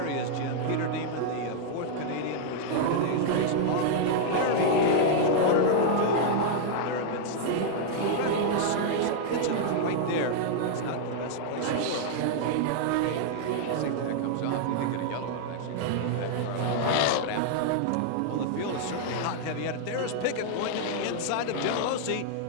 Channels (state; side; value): different; both; correlation -0.01